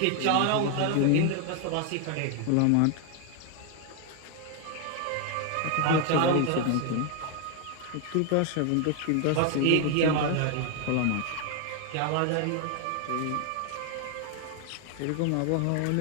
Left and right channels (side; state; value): both; different; correlation 0.00